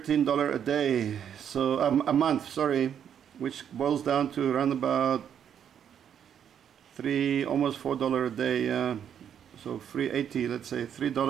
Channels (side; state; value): left; quieter; 8.8 dB